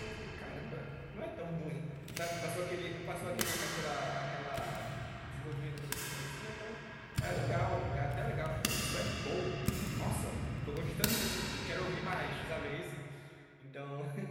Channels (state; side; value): identical; both; correlation 1.00